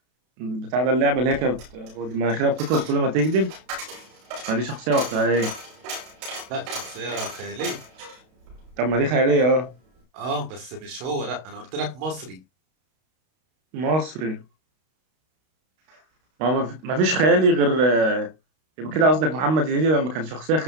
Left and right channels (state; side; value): late; left; 32 ms